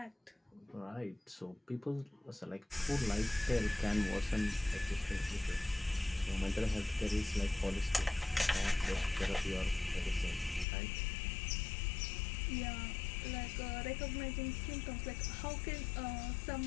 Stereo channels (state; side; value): drops out; right; at 10.7 s